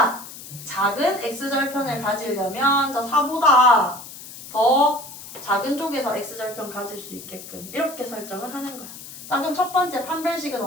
작은 x절편을 가지려면 저 4보다 더 작은 쪽에서 x절편 가질 수 있게끔 이렇게 설정을 하는 거야. 자, 그럼 첫 번째 판별식은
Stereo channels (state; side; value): noise; left; hiss, 14 dB below the sound